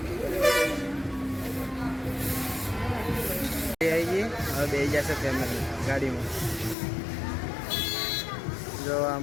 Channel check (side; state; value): right; drops out; at 6.8 s